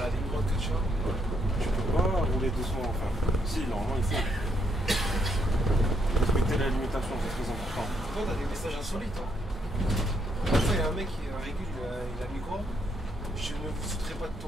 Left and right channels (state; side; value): normal; both; correlation 0.74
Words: ligne droite que tu as. tu peux pas rouler doucement, enfin. Si, normalement il faut. Respecter la limitation, c'est très important. Toi, t'as des messages insolites. Hein. Une fois, il y a un mec qui régule, il a mis quoi? Je ne vous foutrai pas de